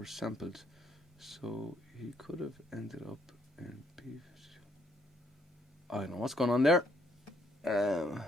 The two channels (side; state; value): both; normal; correlation 0.70